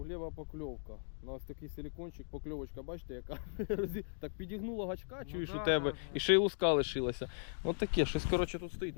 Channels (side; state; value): right; silent; digital silence